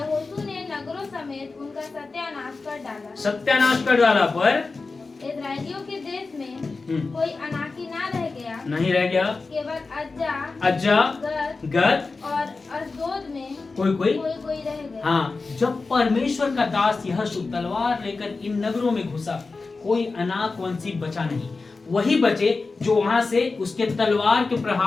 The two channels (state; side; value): quieter; right; 4.0 dB